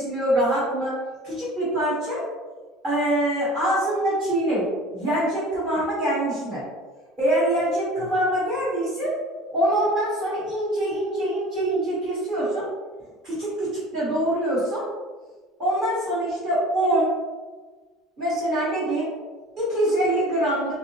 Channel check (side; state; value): both; normal; correlation 0.42